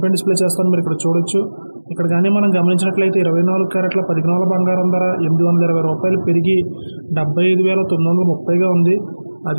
పై డిస్ప్లే చేస్తాను, మీరు ఇక్కడ చూడొచ్చు. ఇక్కడ కానీ మనం గమనించినట్లయితే 24 క్యారెట్ల 10 గ్రాముల బంగారం ధర 820 రూపాయలు పెరిగి 75,930గా ఉంది.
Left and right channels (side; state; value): both; inverted; correlation -1.00